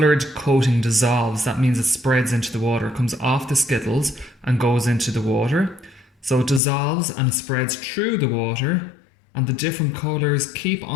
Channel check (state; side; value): drops out; right; at 6.6 s